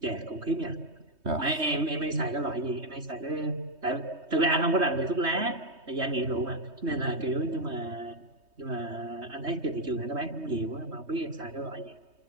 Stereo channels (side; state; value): left; late; 3.2 ms